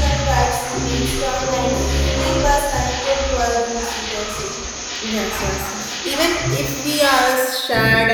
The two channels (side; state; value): both; identical; correlation 1.00